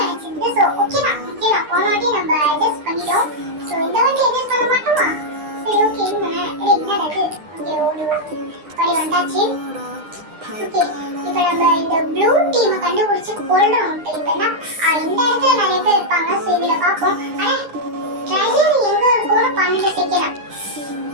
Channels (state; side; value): late; left; 9.8 ms